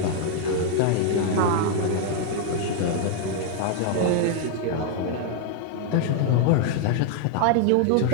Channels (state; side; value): different; both; correlation 0.00